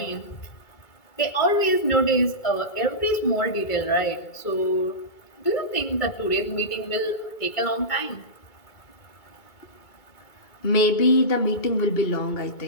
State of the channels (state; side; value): late; right; 2.2 ms